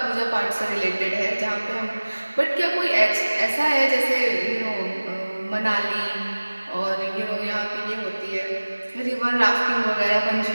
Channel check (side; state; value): both; inverted; correlation -1.00